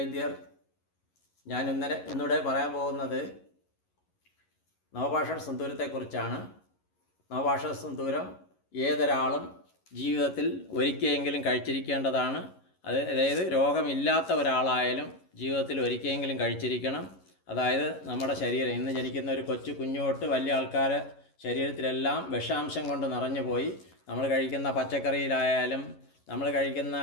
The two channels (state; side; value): late; right; 11 ms